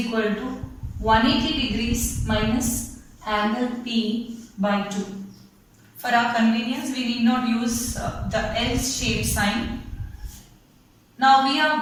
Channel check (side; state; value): both; identical; correlation 1.00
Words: to 180 degrees minus angle P by 2. For our convenience, we need not use the L-shaped sign. Now we